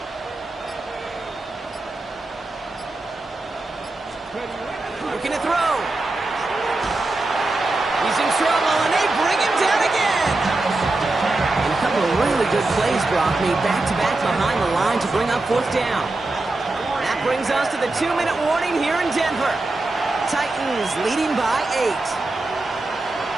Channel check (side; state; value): left; quieter; 3.0 dB